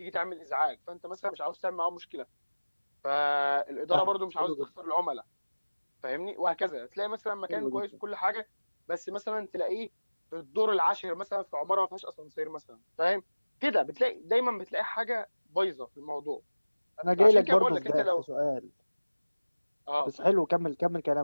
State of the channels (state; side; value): inverted; both; correlation -1.00